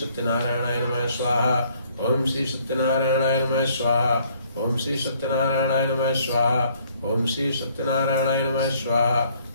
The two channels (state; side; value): inverted; both; correlation -0.62